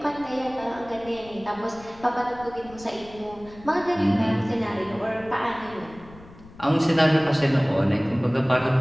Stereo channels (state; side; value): noise; left; rumble, 21 dB below the sound